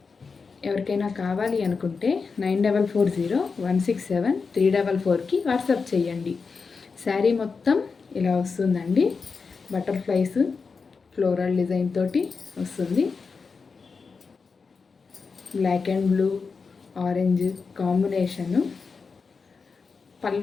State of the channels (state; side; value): quieter; right; 4.9 dB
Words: ఎవరికైనా కావాలి అనుకుంటే 9440167344కి వాట్సాప్ చేయండి. శారీ మొత్తం ఇలా వస్తుందండి. బటర్ఫ్లైస్ ఫ్లోరల్ డిజైన్ తోటి వస్తుంది. Black and blue orange combination.